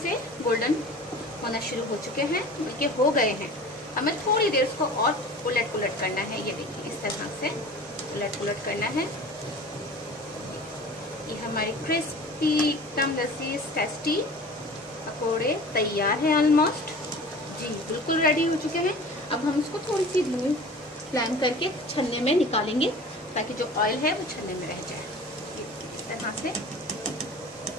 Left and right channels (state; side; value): normal; both; correlation 0.40